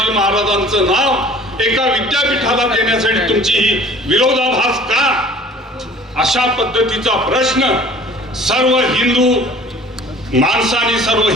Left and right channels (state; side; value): normal; both; correlation 0.48